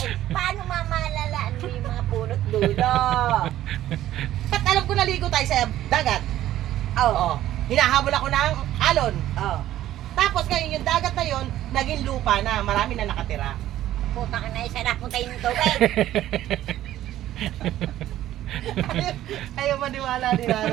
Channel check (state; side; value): quieter; left; 13.3 dB